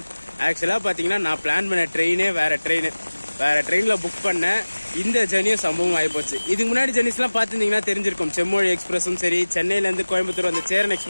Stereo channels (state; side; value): inverted; both; correlation -1.00